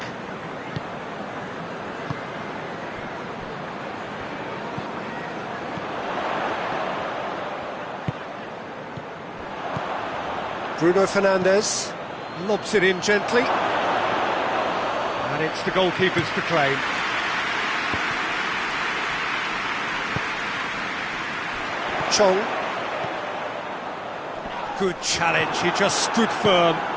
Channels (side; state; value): both; identical; correlation 1.00